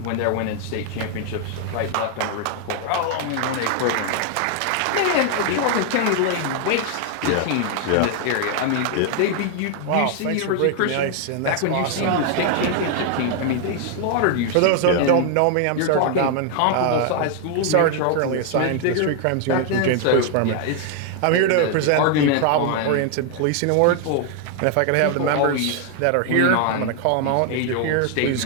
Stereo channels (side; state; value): both; different; correlation 0.00